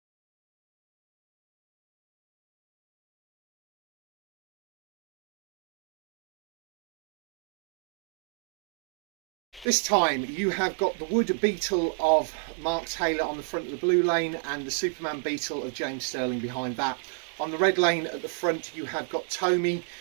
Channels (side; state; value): left; drops out; at 9.7 s